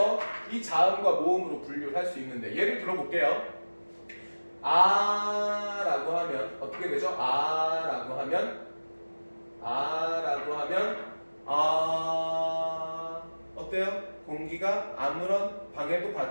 이 자음과 모음으로 분류를 할 수 있는데, 예를 들어볼게요. 아라고 하면 어떻게 되죠? 아라고 하면 어때요? 공기가 아무런 방해도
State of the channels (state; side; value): inverted; both; correlation -1.00